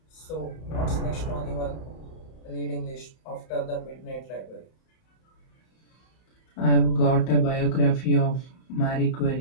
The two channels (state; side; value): late; right; 31 ms